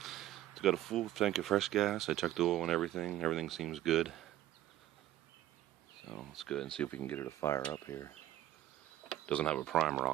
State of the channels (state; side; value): quieter; left; 13.5 dB